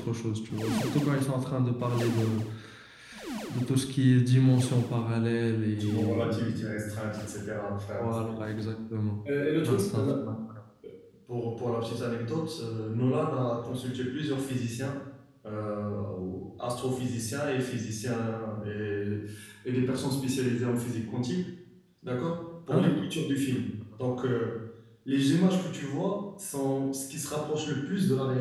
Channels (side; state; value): both; identical; correlation 1.00